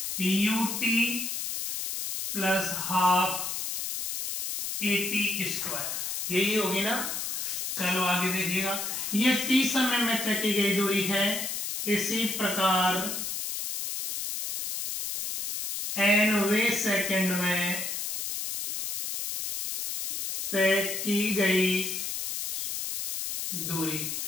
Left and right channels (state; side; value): noise; left; hiss, 3 dB below the sound